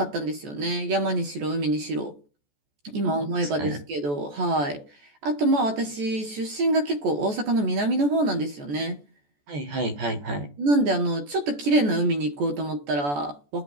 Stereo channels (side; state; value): left; late; 14 ms